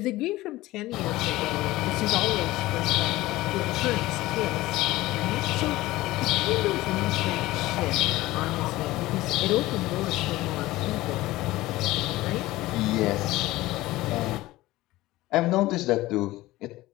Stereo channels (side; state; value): right; quieter; 17.9 dB